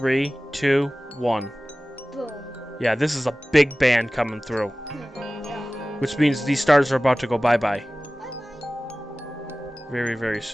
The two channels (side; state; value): both; normal; correlation 0.97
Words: 2, 1. Boom. Yeah, this is a big band coming through. Yeah. Which means these stars are about to go bye-bye. Bye-bye. Very, very